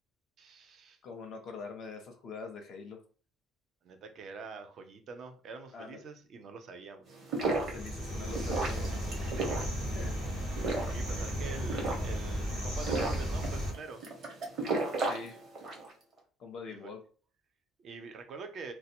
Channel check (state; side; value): normal; both; correlation 0.65